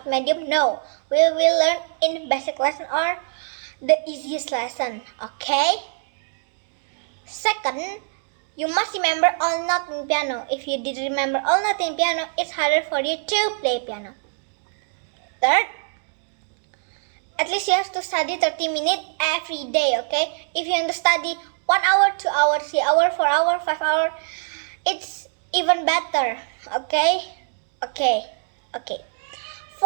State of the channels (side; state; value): left; silent; 63 dB below the other